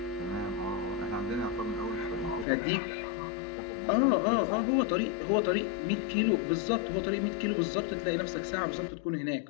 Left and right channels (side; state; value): right; drops out; at 2.5 s